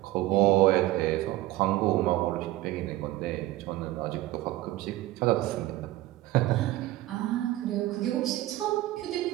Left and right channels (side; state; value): left; quieter; 16.4 dB